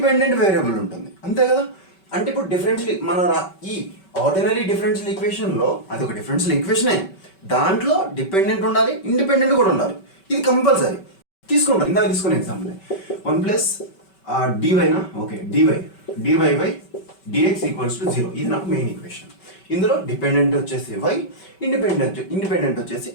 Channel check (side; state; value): right; late; 5.2 ms